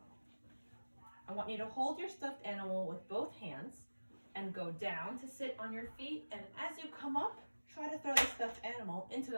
I want you to hold your stuffed animal with both hands and go down to sit on your feet, and as you come up, try to throw the stuffed animal into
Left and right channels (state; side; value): inverted; both; correlation -1.00